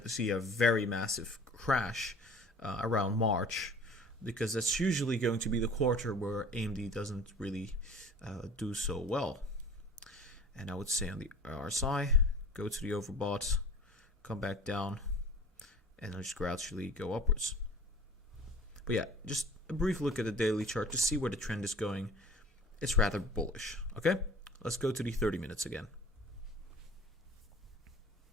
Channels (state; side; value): normal; both; correlation 0.43